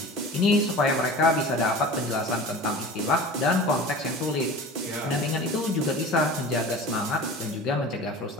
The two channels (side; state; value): both; normal; correlation 0.37